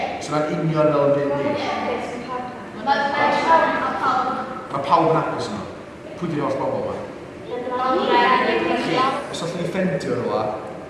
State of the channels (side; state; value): both; identical; correlation 1.00